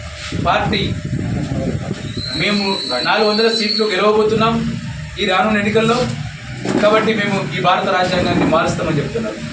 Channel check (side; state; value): both; identical; correlation 1.00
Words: పార్టీ మేము 400 సీట్లు గెలవబోతున్నాం ఈ రానున్న ఎన్నికల్లో. కాబట్టి మేము ఈ భారత రాజ్యాంగాన్ని మారుస్తామని చెప్తున్నారు.